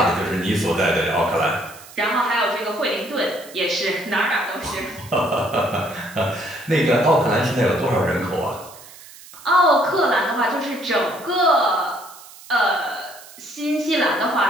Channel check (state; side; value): noise; right; hiss, 19 dB below the sound